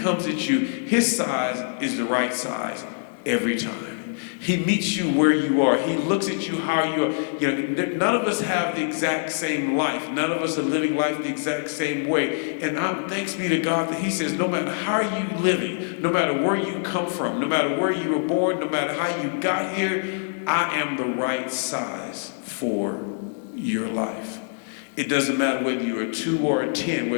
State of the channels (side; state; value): right; silent; digital silence